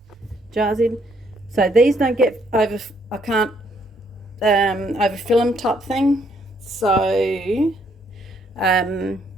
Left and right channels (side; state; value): both; normal; correlation 0.70